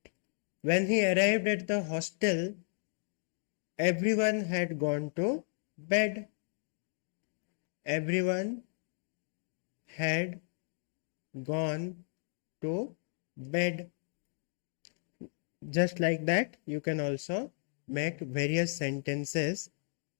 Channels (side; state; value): right; silent; digital silence